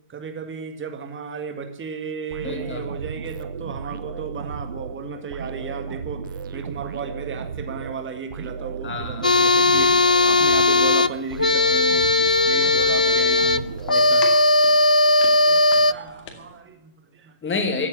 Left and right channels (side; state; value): both; inverted; correlation -0.50